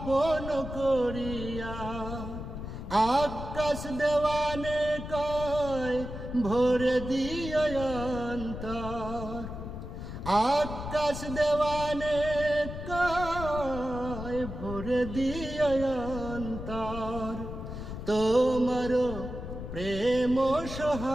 করিয়া। আকাশ দেওয়ানে কয় ভরে দিও অন্তর, আকাশ দেওয়ানে কয় ভরে দিও অন্তর। তোমার প্রেম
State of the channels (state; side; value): noise; left; rumble, 8 dB below the sound